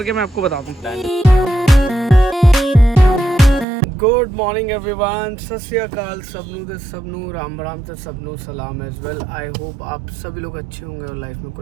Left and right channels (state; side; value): drops out; left; at 3.7 s